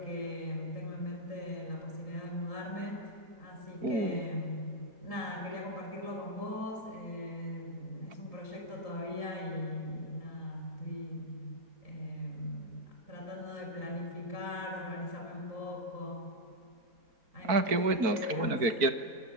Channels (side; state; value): left; late; 4.5 ms